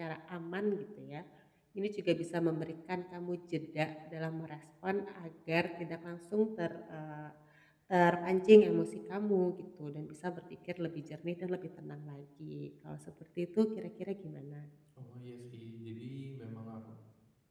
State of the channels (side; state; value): both; identical; correlation 1.00